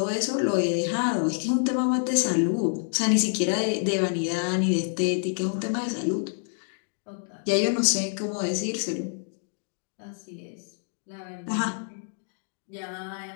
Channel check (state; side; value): silent; right; digital silence